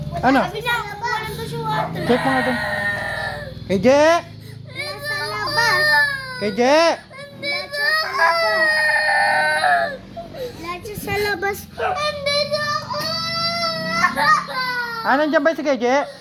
Ano? Sabi na, walang to si water. Check mo nga doon. KJ! Nasa labas. KJ! Nandito ako. Nandito sa labas ko. Nandito ako. Nandiyan ba si KJ?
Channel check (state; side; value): identical; both; correlation 1.00